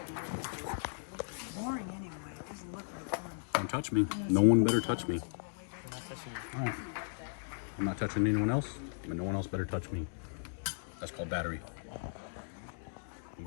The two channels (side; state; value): right; silent; digital silence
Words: Boring anyway. It doesn't look like fun. Don't touch me. No one better touch me. All right. I'm not touching anyone else, but no one else better touch me. That's called battery. I'm